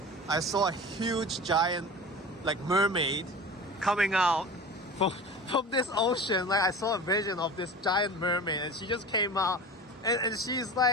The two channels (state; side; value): normal; both; correlation 0.35